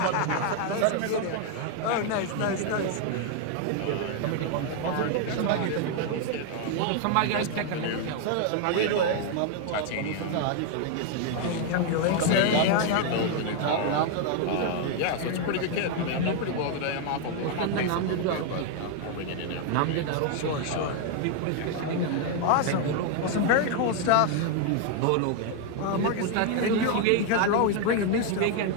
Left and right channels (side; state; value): both; different; correlation 0.00